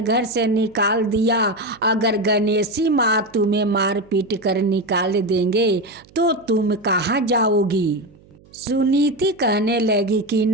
से निकाल दिया, अगर गणेशी माँ तुम्हें मार पीट कर निकाल देंगे तो तुम कहाँ जाओगी। सुनीति कहने लगी कि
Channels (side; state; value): right; noise; hum, 27 dB below the sound